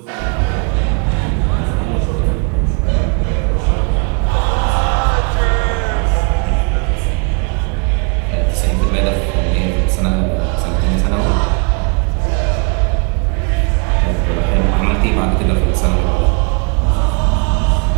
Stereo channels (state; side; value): quieter; left; 35.8 dB